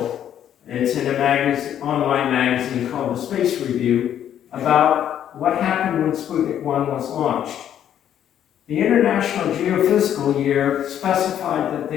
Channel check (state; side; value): quieter; right; 10.2 dB